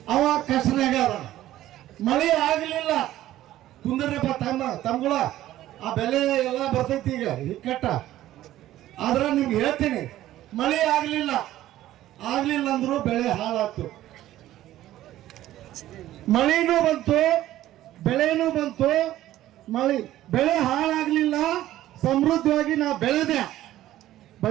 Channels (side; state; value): left; quieter; 14.1 dB